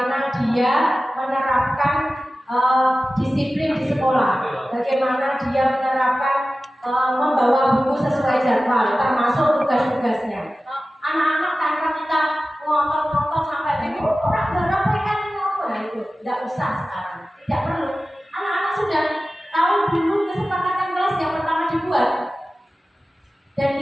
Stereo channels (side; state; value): both; normal; correlation 0.95